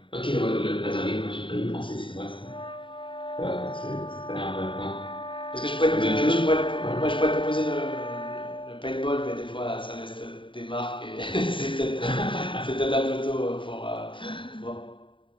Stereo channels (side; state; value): right; late; 0.25 ms